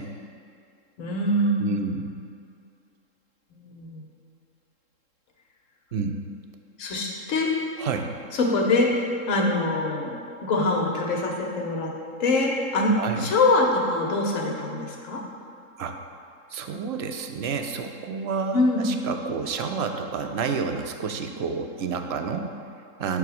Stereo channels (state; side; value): late; right; 3.7 ms